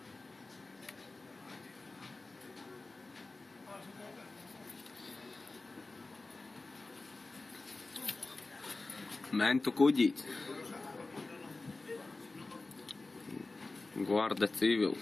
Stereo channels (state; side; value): quieter; right; 3.4 dB